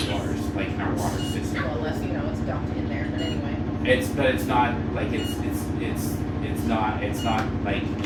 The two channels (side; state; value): both; identical; correlation 1.00